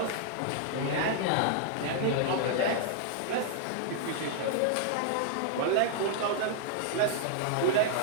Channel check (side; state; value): both; different; correlation -0.01